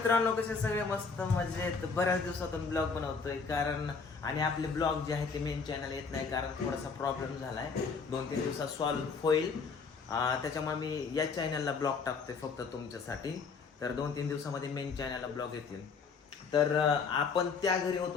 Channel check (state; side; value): quieter; right; 5.1 dB